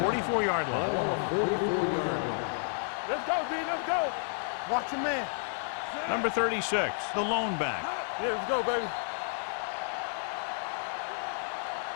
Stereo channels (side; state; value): right; silent; digital silence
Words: line. Ball on the 44-yard line. Let's go, D. Let's go. Watch your man. Number 36, the lone back. Let's go, baby.